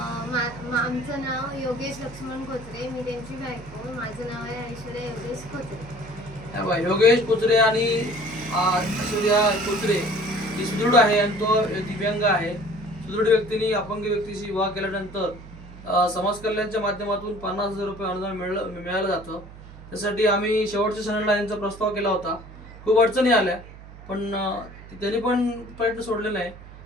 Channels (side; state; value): right; noise; hum, 17 dB below the sound